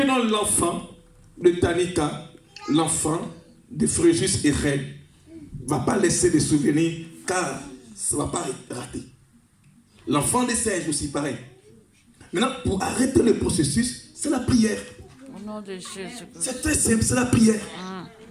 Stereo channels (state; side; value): identical; both; correlation 1.00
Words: dans l'enfant de Tanika, l'enfant de Fréjus et Reine, ne va pas laisser des souvenirs car ça ne va pas rater. L'enfant des singes aussi pareil. Maintenant, pour arrêter le processus, c'est la prière. Au nom de Jésus. C'est très simple, c'est la prière.